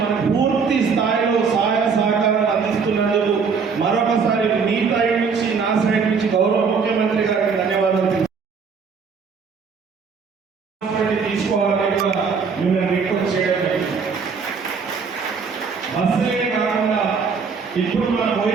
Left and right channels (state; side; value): quieter; left; 5.5 dB